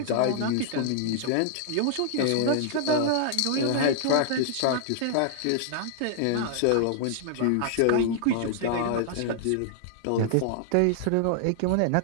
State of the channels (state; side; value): different; both; correlation -0.01